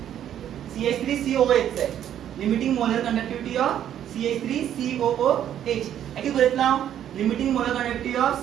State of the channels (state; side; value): quieter; left; 10.5 dB